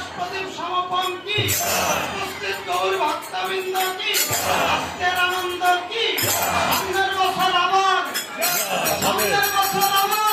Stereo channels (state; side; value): identical; both; correlation 1.00